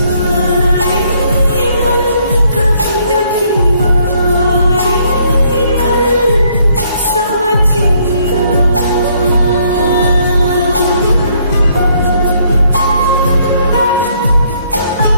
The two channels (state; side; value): inverted; both; correlation -0.68